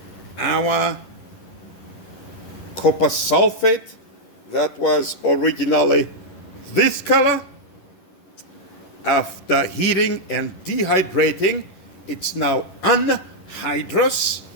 our copper sulfate that was originally this color, after heating and dehydrating, it's now anhydrous,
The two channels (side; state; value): right; late; 11 ms